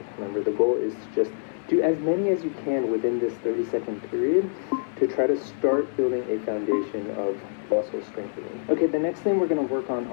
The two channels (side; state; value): right; silent; digital silence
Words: Remember, the goal is to just do as many as you can within this 30-second period to try to start building a foundation of muscle strengthening. Okay, the next thing we're going to work on